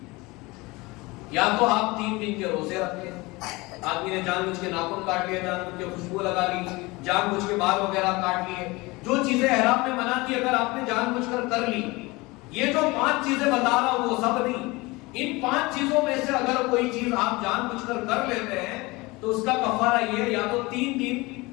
یا تو آپ 3 دن کے روزے رکھیں, آدمی نے جان بوجھ کے ناخن کاٹ لیا, جان بوجھ کے خوشبو لگا لی, جان بوجھ کے بال وغیرہ کاٹ لیے, جو چیزیں احرام میں منع تھی اگر آپ نے جان بوجھ کر لی, یہ جو 5 چیزیں بتا رہا ہوں وہ سب نہیں, ان 5 چیزوں میں سے اگر کوئی چیز آپ جان بوجھ کر لیتے ہیں تو اس کا کفارہ یہ ہے, یا تو 3 دن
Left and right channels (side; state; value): right; quieter; 23.1 dB